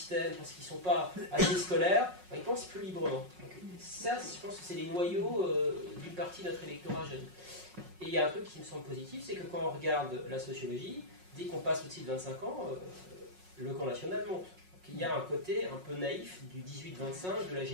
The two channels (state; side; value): late; left; 5.5 ms